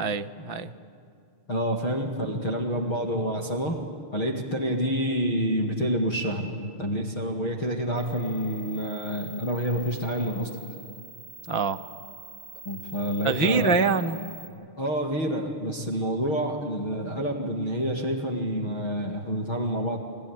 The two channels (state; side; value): late; right; 6.5 ms